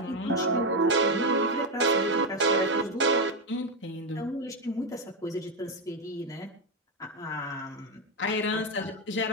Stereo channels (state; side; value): normal; both; correlation 0.07